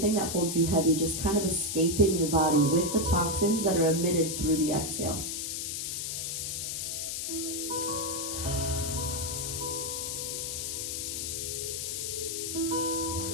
that holds you heavy just kind of escaping your body with the toxins that are emitted through the exhale.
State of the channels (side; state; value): left; noise; hiss, 3 dB below the sound